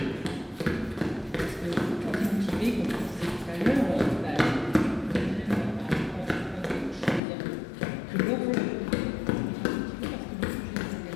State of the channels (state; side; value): drops out; right; at 7.2 s